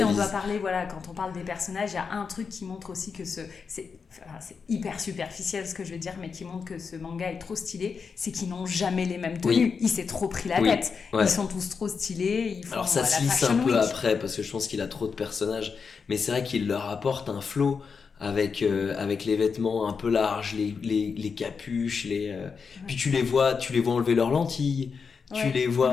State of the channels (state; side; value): quieter; right; 5.6 dB